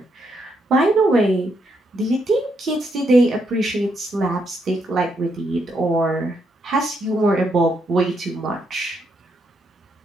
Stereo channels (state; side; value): normal; both; correlation 0.77